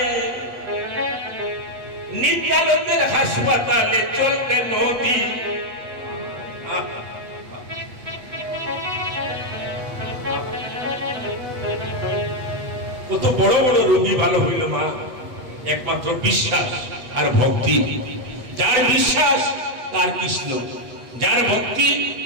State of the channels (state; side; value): late; left; 7.8 ms